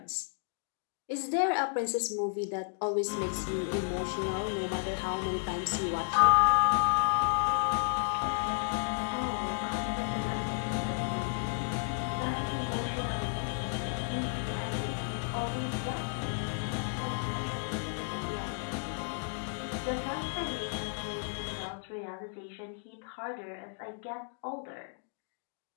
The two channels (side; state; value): right; silent; digital silence